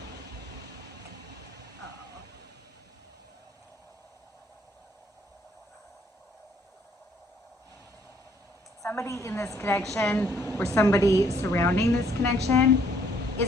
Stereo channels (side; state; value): both; normal; correlation 0.65